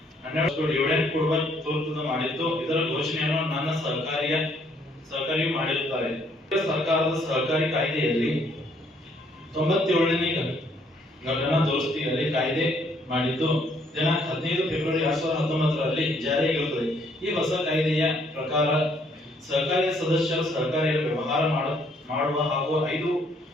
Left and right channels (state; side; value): normal; both; correlation 0.66